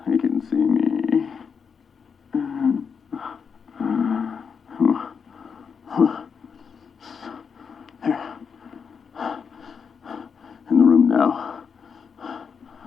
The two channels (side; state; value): right; quieter; 6.2 dB